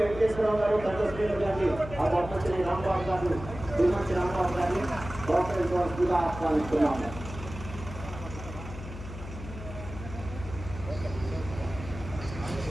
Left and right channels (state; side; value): noise; left; hum, 11 dB below the sound